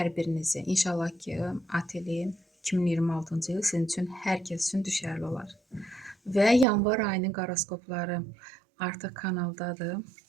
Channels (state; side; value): drops out; left; at 6.7 s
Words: birinizi. İnşallah ki, ateli 2026-cı il sizin üçün hər kəs üçün düşərli olar. Və yanvar ayının horoskopları artıq kanaldadır.